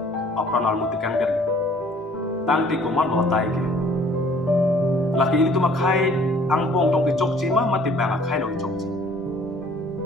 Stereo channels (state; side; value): normal; both; correlation 0.56